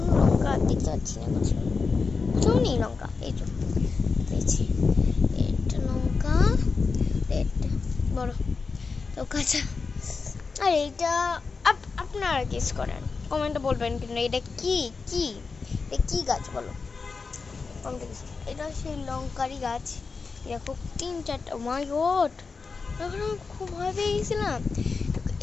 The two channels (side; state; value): right; quieter; 4.6 dB